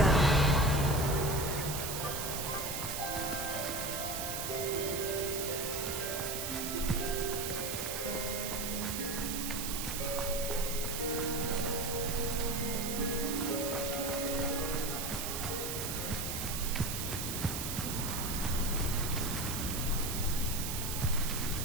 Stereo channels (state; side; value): noise; right; hiss, 3 dB below the sound